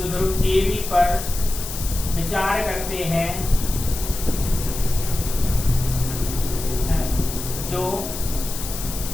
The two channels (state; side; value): noise; left; hiss, 8 dB below the sound